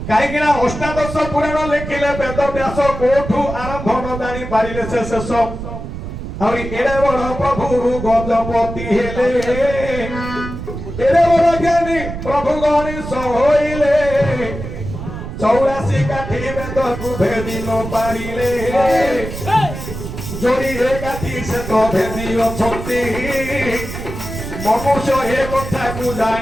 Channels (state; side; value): noise; right; rumble, 8 dB below the sound